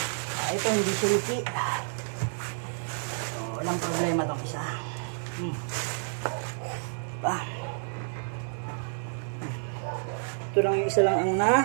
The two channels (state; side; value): silent; left; digital silence